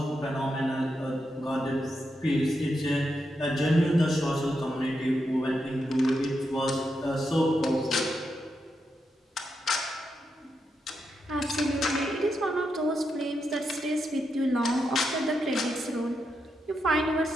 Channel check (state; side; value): normal; both; correlation 0.84